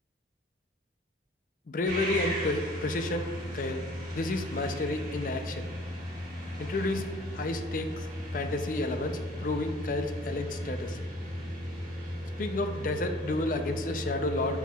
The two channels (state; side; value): normal; both; correlation 0.51